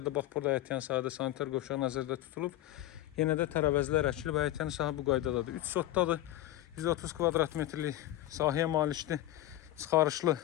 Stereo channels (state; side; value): quieter; right; 14.6 dB